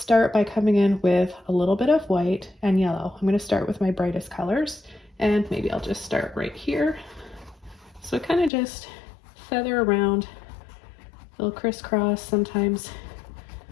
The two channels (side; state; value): right; drops out; at 8.5 s